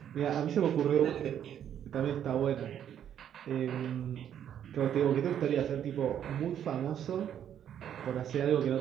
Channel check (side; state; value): left; quieter; 9.7 dB